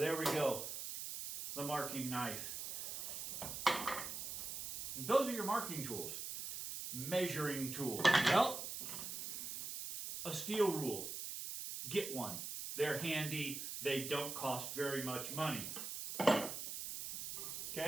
we go, the marking knife. And those are your marking tools. Measuring tools. Well, a steel rule. Get one. They're handy. They don't cost very much money.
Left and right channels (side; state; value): right; noise; hiss, 6 dB below the sound